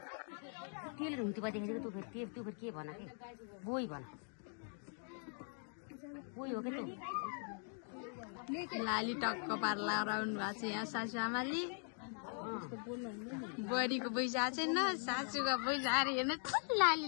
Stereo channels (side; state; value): right; silent; 50 dB below the other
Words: तेल हुन्थ्यो देखेको तँ फेरि त्यो फेरि के भन के बोई भन बोई हो के लाली टक्क पार लगाउनु भएको छ यहाँ सासू आमाले बुहारीको पैसा छैन सासूको पैसा आएर हेर्नु लाली